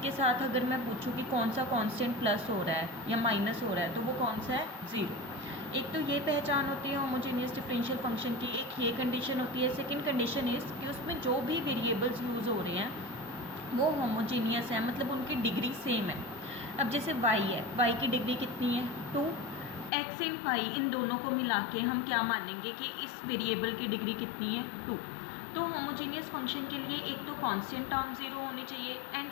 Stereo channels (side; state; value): right; drops out; at 19.9 s